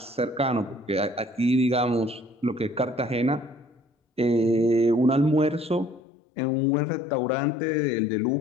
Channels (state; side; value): drops out; right; at 6.0 s